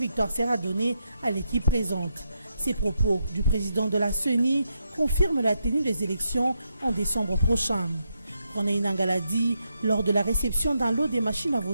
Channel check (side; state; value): both; inverted; correlation -0.82